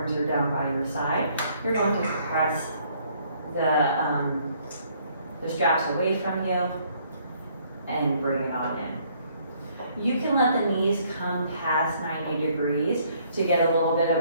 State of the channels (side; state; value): both; inverted; correlation -0.65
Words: are down by your side. You're going to press the straps away from you and bring it on in. You can let the knees come past 90 degrees to get a little bit of